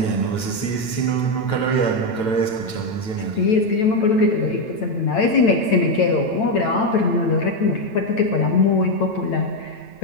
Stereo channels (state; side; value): late; right; 9.1 ms